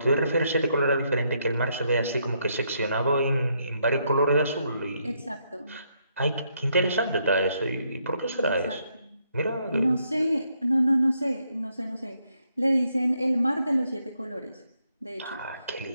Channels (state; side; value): inverted; both; correlation -0.75